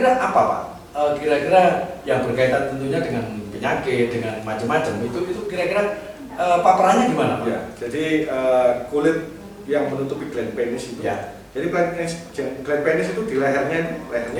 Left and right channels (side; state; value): both; identical; correlation 1.00